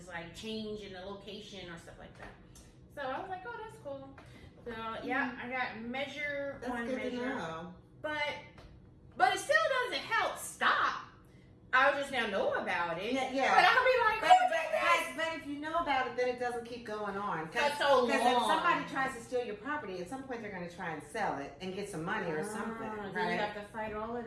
like change in the location or stuff like that. So I was like, oh, that's cool. So yeah, I got Measure That's on good Measure. to know. But it still doesn't help stop. I just now know about it. Yeah. But I'll be like, who did this? But if you know about it, then it doesn't keep going on. That's so long. Because if somebody tries to steal your property, at some point they're going to try and sell it and get some money or something. Then Right? you have to fight all of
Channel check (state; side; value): identical; both; correlation 1.00